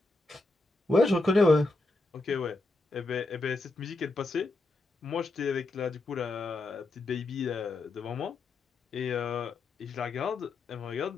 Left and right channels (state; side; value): quieter; right; 3.1 dB